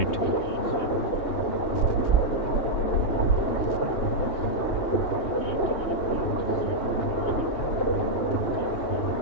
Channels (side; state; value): right; late; 3.2 ms